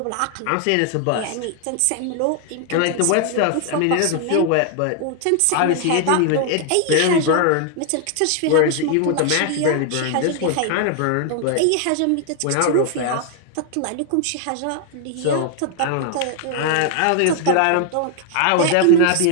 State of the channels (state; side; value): different; both; correlation 0.00